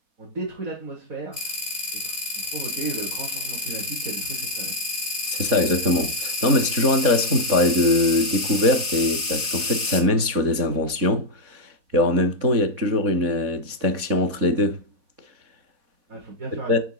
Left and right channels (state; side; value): late; left; 4.1 ms